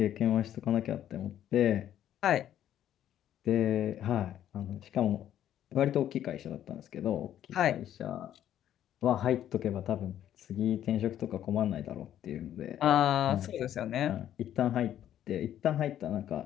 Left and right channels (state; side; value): quieter; right; 11.2 dB